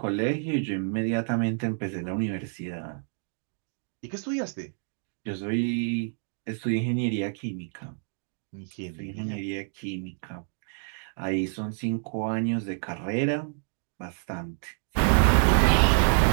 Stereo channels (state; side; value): silent; left; digital silence